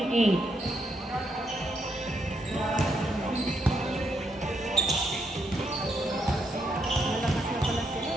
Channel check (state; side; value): normal; both; correlation 0.77